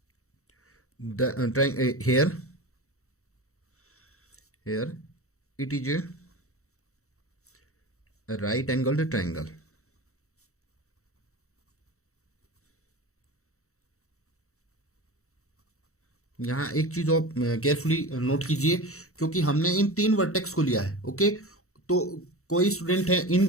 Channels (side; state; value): right; late; 0.64 ms